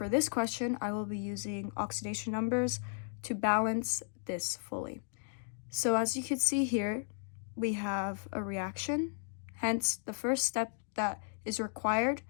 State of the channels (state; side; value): silent; right; digital silence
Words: this question, I will be using oxidation numbers to balance this fully. So as you can see here, we have a reaction. Hence, the first step that is required